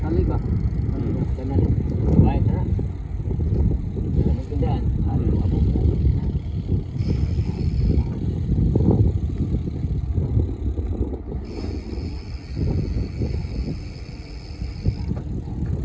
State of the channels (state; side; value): identical; both; correlation 1.00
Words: Kali ba? Kanan. Baik na. Tindahan.